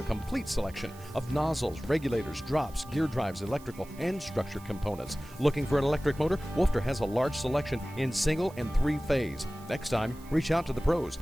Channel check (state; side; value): noise; right; hiss, 22 dB below the sound